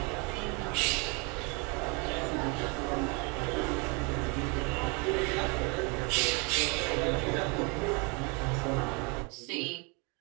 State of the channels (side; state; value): left; quieter; 31.5 dB